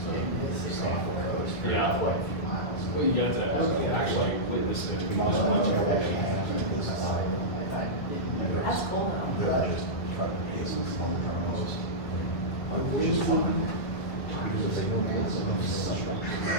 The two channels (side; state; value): right; late; 2.0 ms